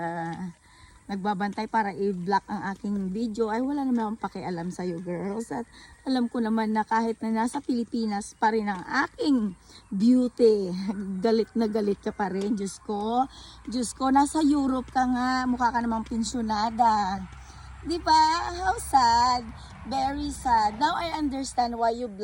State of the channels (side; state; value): both; identical; correlation 1.00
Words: nagbabantay para i-block ang aking video. Ay wala naman akong pakialam sa iyo girls. At alam ko naman na kahit na nasa Pilipinas pa rin ang aking beauty, galit na galit ka pa rin. Diyos ko, nasa Europe ka nga, mukha ka namang pensyonada. Di ba? How sad. Very sad. Now I understand why you